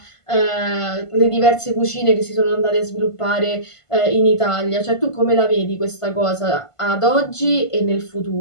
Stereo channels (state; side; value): late; right; 1.5 ms